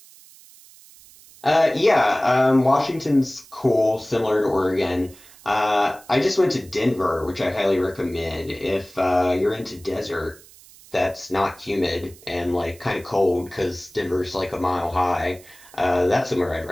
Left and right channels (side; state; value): right; noise; hiss, 23 dB below the sound